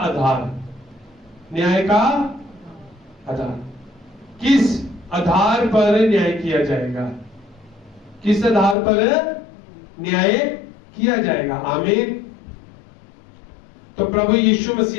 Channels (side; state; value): right; drops out; at 8.8 s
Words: न्याय का आधार, किस आधार पर न्याय किया जाएगा, किस आधार पर न्याय किया जाएगा। आमीन। तो प्रभु यीशु